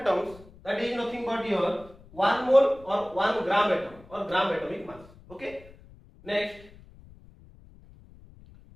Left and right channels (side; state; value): left; noise; rumble, 23 dB below the sound